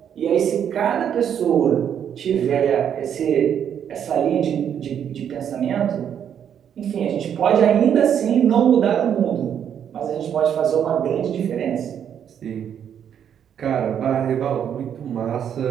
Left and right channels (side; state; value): left; quieter; 8.8 dB